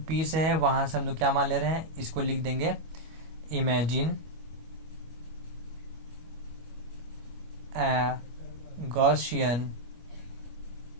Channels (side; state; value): left; late; 25 ms